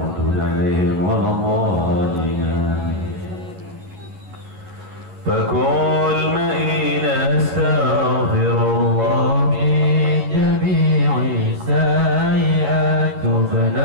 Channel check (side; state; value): left; late; 11 ms